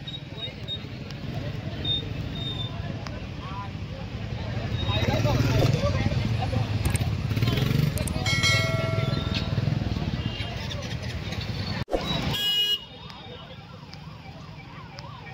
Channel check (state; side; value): identical; both; correlation 1.00